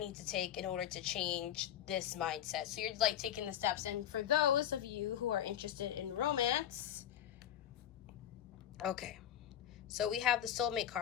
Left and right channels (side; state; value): right; quieter; 10.7 dB